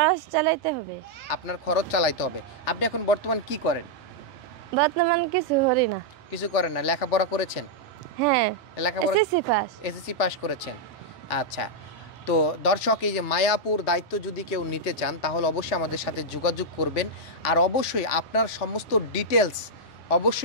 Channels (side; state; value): both; normal; correlation -0.05